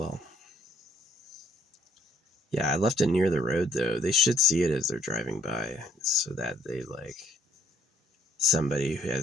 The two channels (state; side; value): normal; both; correlation 0.65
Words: Yeah, I left it near the road though. They should see it as they're driving by so that they like somebody who